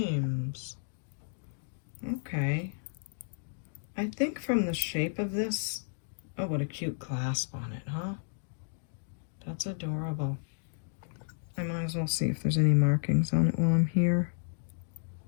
Okay. I think from the shape of this, oh, what a cute clasp on it, huh? That's adorable. I might as well see if there's any markings on it while I'm here.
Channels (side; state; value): right; silent; digital silence